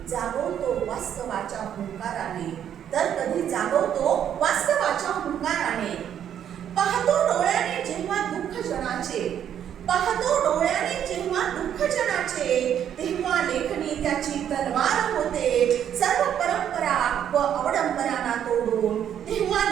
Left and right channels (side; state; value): left; quieter; 9.6 dB